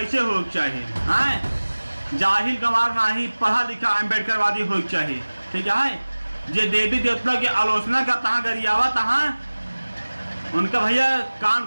हो चाहिए, हैं जाहिल गंवार नहीं, पढ़ा लिखा अम्बेडकरवादी हो चाहिए। ठीक है, जे देवी देवता की आलोचना का तहाँ गरियावा तहाँ उनका भैया कान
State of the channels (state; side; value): inverted; both; correlation -1.00